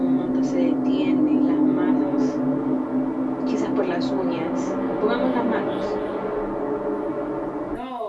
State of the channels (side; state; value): both; identical; correlation 1.00